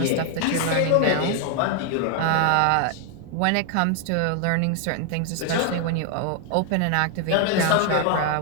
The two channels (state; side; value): different; both; correlation 0.00